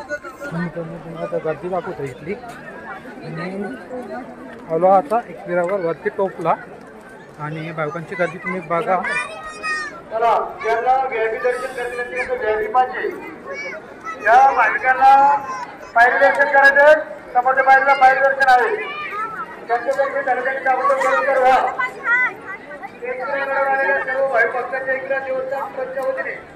गर्दी दाखवतो इथली आलो आता एकविरावर वरती टोपला आणि बायकांची गर्दी तुम्ही बघा या भाविकांना पायरी दर्शन करायचं समोरच्या पायरीला पायरी दर्शन आहे त्यांच्यातर्फे दर्शनाची अगोदर व्हा सर्व भाई भक्तांच्या इकडे देवस्थान ट्रस्टच्या वतीने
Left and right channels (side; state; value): both; identical; correlation 1.00